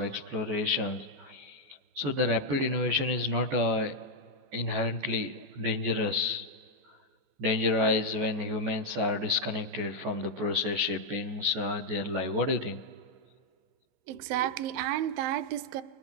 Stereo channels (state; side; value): late; left; 15 ms